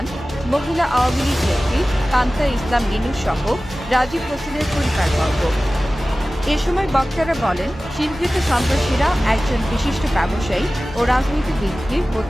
মহিলা আওয়ামী লীগ নেত্রী কান্তা ইসলাম মিনু সহ রাজীব হোসেনের পরিবারবর্গ। এ সময় বক্তারা বলেন, স্বীকৃত সন্ত্রাসীরা একজন বিশিষ্ট ব্যবসায়ী ও রাজনীতিবিদকে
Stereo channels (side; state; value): both; normal; correlation 0.97